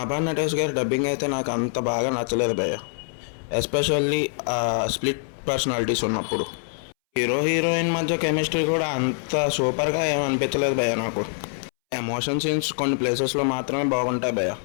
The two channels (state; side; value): silent; right; 62 dB below the other